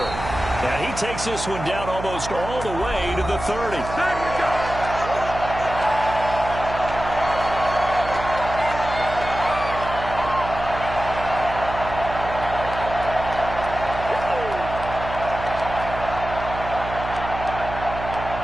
And he takes this one down almost all the way to the 30.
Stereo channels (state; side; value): noise; right; hum, 9 dB below the sound